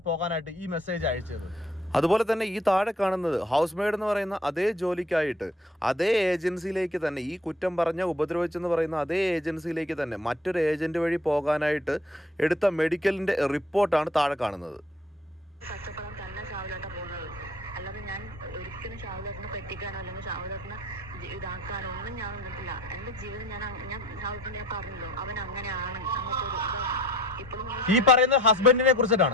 പോകാനായിട്ട് ഈ മെസ്സേജ് അയച്ചത്? അതുപോലെ തന്നെ ഈ താഴെ കാണുന്നത് ഹൗസ് മെയ്ഡ് എന്ന് പറയുന്ന അതേ ജോലിക്കായിട്ട് അതേ ഏജൻസിയിലേക്ക് തന്നെ, ഈ കുറ്റം പറഞ്ഞ ഉപദ്രവിച്ചെന്ന് പറയുന്ന അതേ ഏജൻസിയിലേക്ക് തന്നെ മറ്റൊരു ഏജന്റ് വഴി പോകാനായിട്ട് എടുത്ത മെഡിക്കലിന്റെ റിപ്പോർട്ടാണ് താഴെ കാണുന്നത്. കഷ്ടപ്പെടാൻ തന്നെ ഷാവുലേട്ട പോകുന്നത്. അല്ലാതെ ഞാൻ ഒരിക്കലും ഷാവുലേട്ടനെ പറ്റിക്കാനോ അല്ലെങ്കിൽ ഷാവുലേട്ടനെ ഇതാക്കാനോ ഒന്നും ഞാൻ നിന്നിട്ടില്ല. എന്റെ ജീവിതം ഞാൻ ഷാവുലേട്ടനെ ഞാൻ പറഞ്ഞല്ലോ, അവൻ അങ്ങനെയാണ്. ഇപ്പോഴും ഈ പറയുന്ന ഹസ്ബൻഡിനെ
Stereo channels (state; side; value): normal; both; correlation 0.54